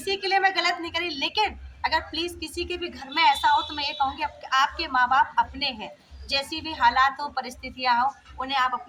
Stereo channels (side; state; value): both; identical; correlation 1.00